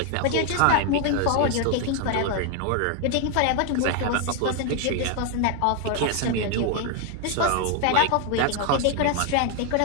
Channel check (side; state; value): both; different; correlation 0.01